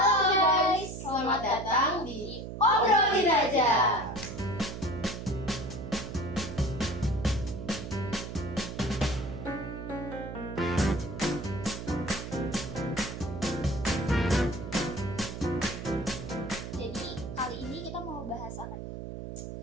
guys, selamat datang di Obrolin Aja. Jadi kali ini kita mau bahas apa?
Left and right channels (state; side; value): noise; right; hum, 8 dB below the sound